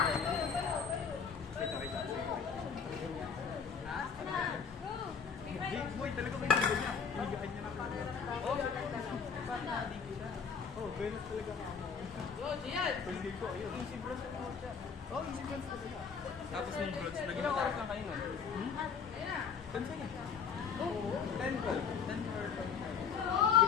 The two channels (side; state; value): right; quieter; 6.4 dB